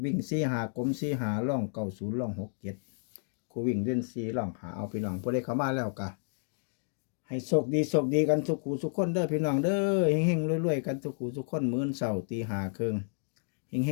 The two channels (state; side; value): silent; right; 57 dB below the other